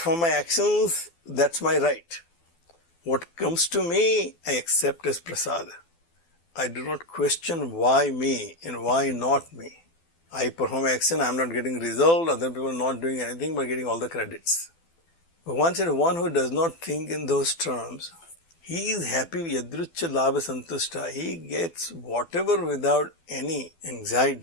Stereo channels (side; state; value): right; late; 12 ms